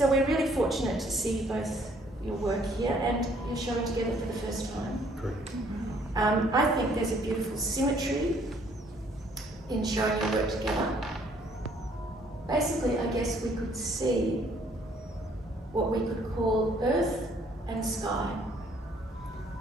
we're really fortunate to see both your work here and you're showing together for the first time. Correct. I think there's a beautiful symmetry in showing your work together. Basically, I guess we could see what we could call earth and sky.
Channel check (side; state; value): both; normal; correlation 0.63